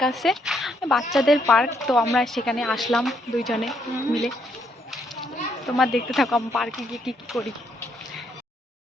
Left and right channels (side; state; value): both; normal; correlation 0.73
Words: আছে, বাচ্চাদের পার্ক। তো আমরা সেখানে আসলাম দুইজনে মিলে। তোমরা দেখতে থাকো আমি পার্কে গিয়ে কী কী করি।